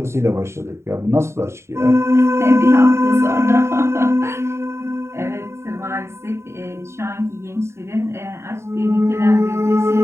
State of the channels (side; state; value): left; late; 0.13 ms